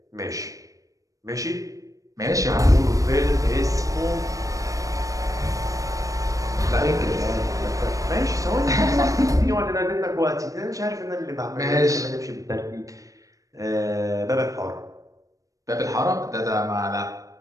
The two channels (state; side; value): late; left; 0.16 ms